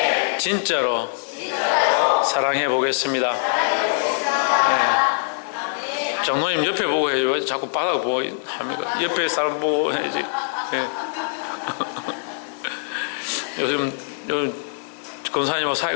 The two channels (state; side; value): silent; right; 60 dB below the other